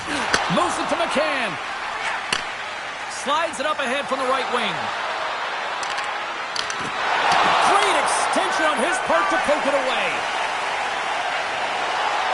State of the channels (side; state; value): both; identical; correlation 1.00